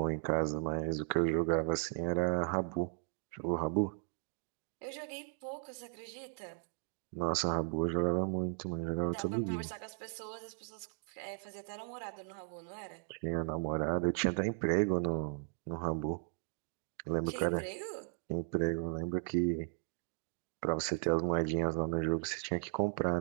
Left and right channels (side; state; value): left; silent; 53 dB below the other